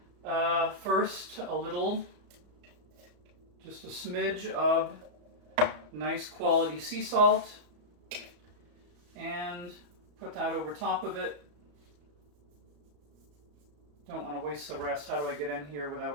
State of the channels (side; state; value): left; late; 34 ms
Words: first a little, just a smidge of nice quality sea salt, and put that over top of it. Don't want to waste the rest. How do I get in here